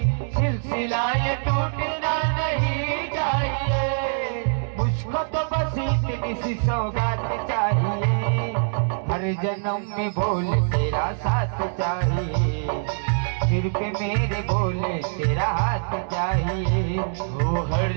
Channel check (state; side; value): silent; left; digital silence